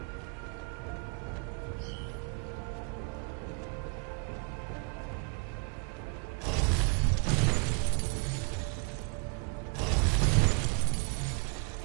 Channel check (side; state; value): left; quieter; 33.1 dB